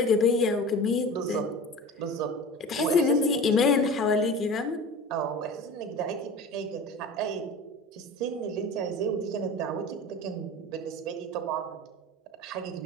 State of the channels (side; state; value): both; normal; correlation 0.35